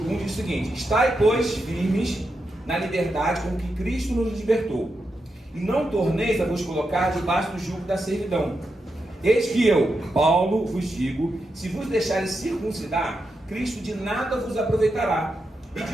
1 diz o seguinte: estai, pois, firmes na liberdade com que Cristo nos libertou, e não torneis a vos colocar debaixo do jugo da servidão. Eis que eu, Paulo, vos digo, se vos deixares circuncidar, Cristo de nada vos aproveitará. E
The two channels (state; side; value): normal; both; correlation 0.86